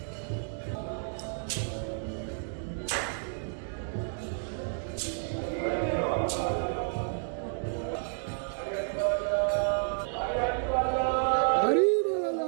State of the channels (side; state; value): left; silent; digital silence